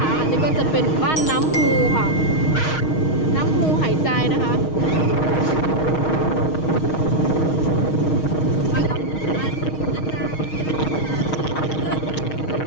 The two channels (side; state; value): right; late; 6.4 ms